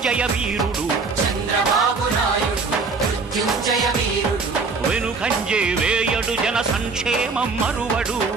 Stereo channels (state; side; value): quieter; left; 4.3 dB